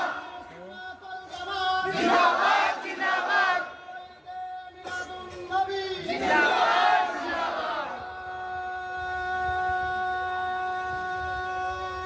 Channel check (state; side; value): identical; both; correlation 1.00